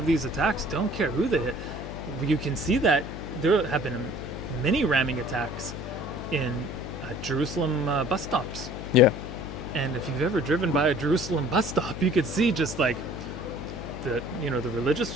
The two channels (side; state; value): left; noise; hum, 9 dB below the sound